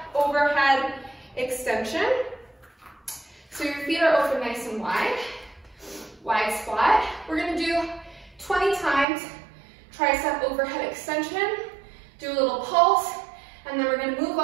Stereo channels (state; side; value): drops out; left; at 9.1 s